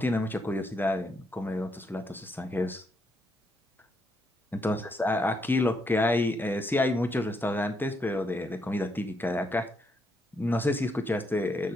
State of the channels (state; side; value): normal; both; correlation 0.77